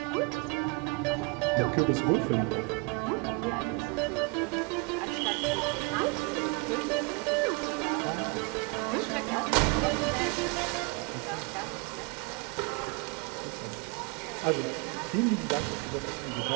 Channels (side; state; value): left; quieter; 30.9 dB